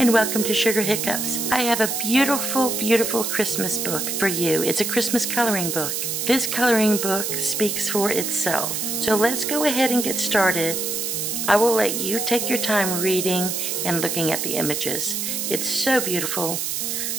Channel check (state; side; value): noise; right; hiss, 2 dB below the sound